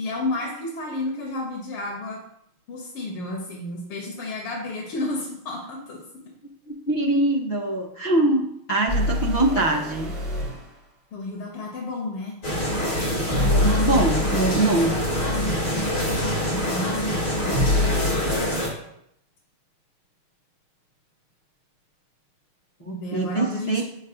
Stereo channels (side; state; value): right; late; 6.4 ms